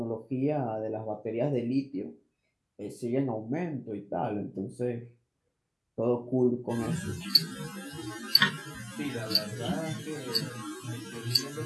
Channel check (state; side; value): identical; both; correlation 1.00